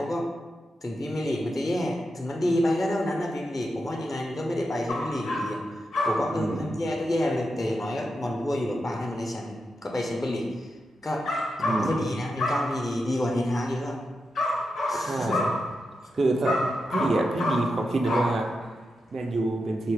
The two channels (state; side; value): normal; both; correlation 0.88